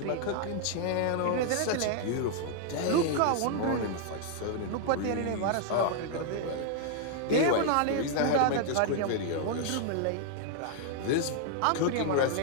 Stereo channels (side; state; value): both; different; correlation -0.01